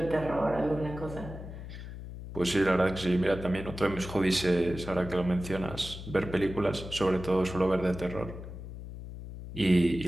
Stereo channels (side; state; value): left; noise; hum, 11 dB below the sound